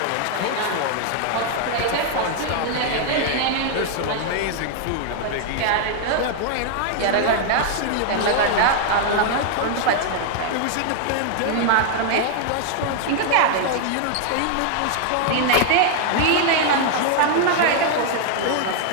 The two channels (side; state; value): both; different; correlation 0.00